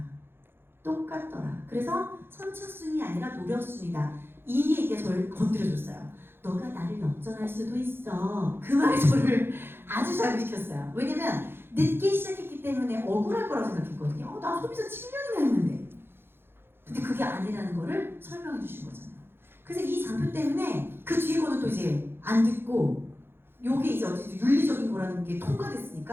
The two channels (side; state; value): left; late; 0.11 ms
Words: 똑같더라. 그래서 선착순이 아니라 노력순이다. 이 얘기가 저를 건드려줬어요. 너가 나를 역전할 수도 있어. 그 말이 저를 아주 자극시켰어요. 왜냐면 늦게 시작했기 때문에 억울할 거라고 생각했거든요. 나 소비자 7년이나 했는데. 근데 그게 아니라는 거를 설명해 주신 거잖아요. 그래서 이 장표 때문에 그 뒤에 거는 또 이제 안 듣고 요게 이제 어쨌든 윤리적인 거라는 게